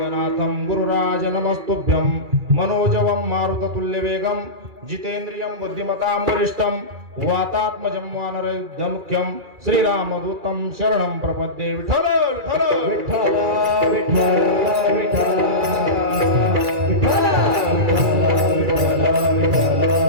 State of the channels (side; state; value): left; late; 2.4 ms